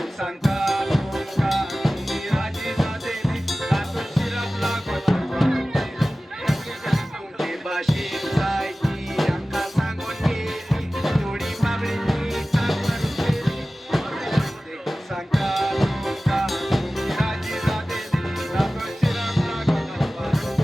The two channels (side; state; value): both; normal; correlation 0.96